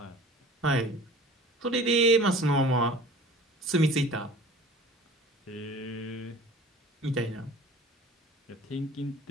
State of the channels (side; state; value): both; normal; correlation 0.43